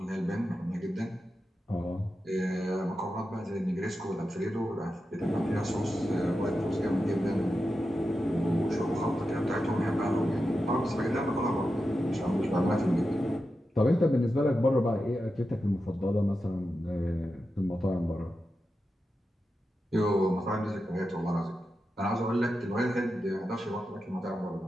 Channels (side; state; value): both; normal; correlation 0.90